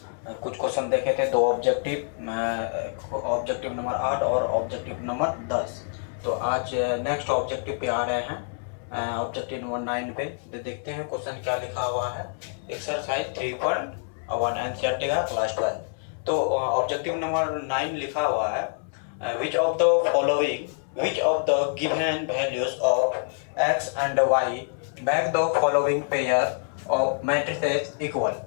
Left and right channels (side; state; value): right; silent; 61 dB below the other